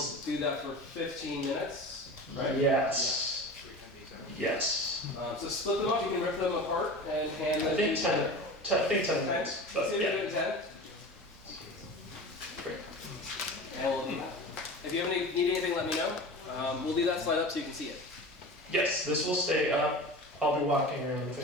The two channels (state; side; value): normal; both; correlation 0.33